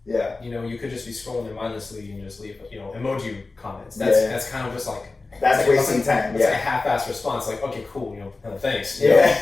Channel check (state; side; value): quieter; right; 3.6 dB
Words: Yeah. You could just be scrolling there mindlessly and just leave emoji comments. That's kind of just that's wasting time. It's a half-assed response. Okay, cool. Thanks. Yeah.